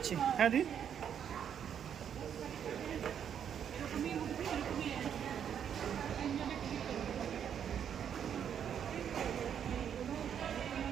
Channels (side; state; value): left; quieter; 8.6 dB